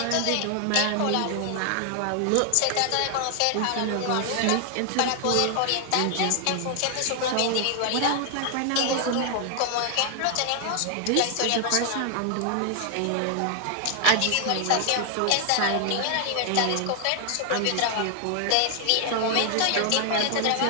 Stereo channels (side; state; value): both; different; correlation 0.00